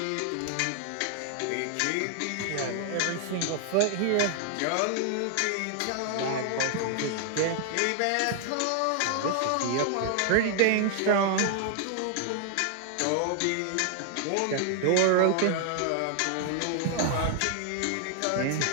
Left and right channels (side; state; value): both; different; correlation 0.00